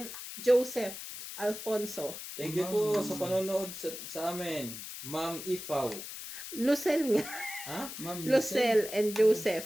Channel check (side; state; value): left; noise; hiss, 9 dB below the sound